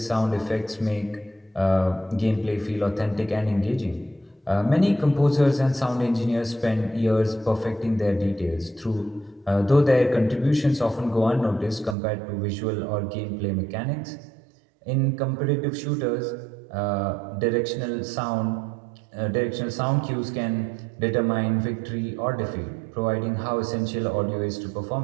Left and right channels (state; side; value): drops out; left; at 12.0 s